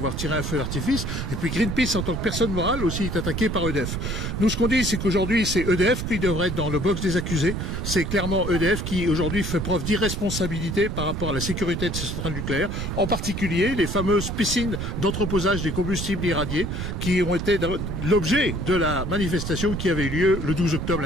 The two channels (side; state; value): right; noise; rumble, 3 dB below the sound